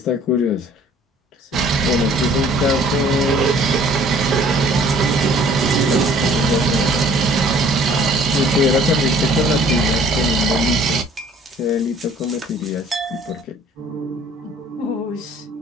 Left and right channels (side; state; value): both; normal; correlation 0.55